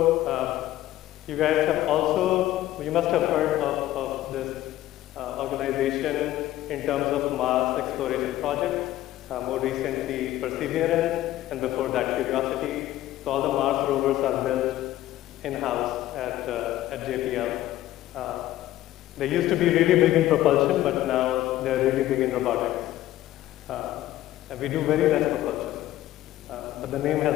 you guys have also, you must have heard of this organization in terms of Mars exploration projects, more recently Perseverance, and before that Curiosity. So all the Mars rovers are built in-house at JPL. They used to be really big in propulsion, but now they're really big in robotics. And we do very less propulsion, but the name has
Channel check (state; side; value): quieter; right; 14.5 dB